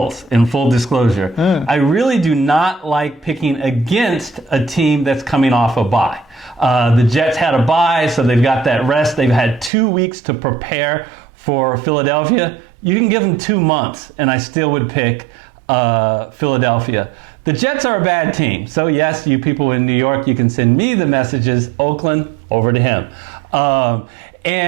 in full disclosure. I really do not like picking against a team that's coming off a bye. The Jets had a bye, so they've got that rest. They've had 2 weeks to prepare for Philadelphia. You can give them 2 months, and I still would pick Philadelphia. The Jets are a bad team. So yes, you people in New York, you can send me the messages. Oakland, over to him.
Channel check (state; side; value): drops out; left; at 9.7 s